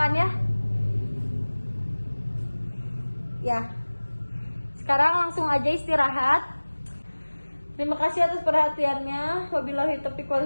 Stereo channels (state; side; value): inverted; both; correlation -1.00